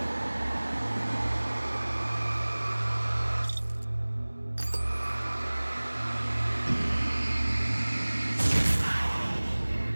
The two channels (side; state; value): both; inverted; correlation -1.00